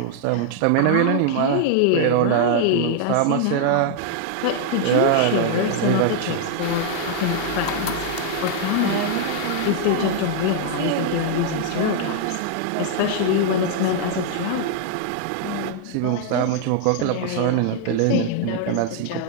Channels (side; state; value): both; different; correlation -0.01